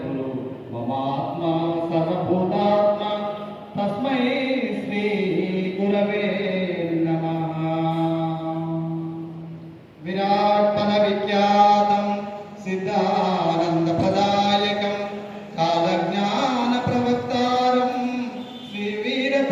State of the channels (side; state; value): both; identical; correlation 1.00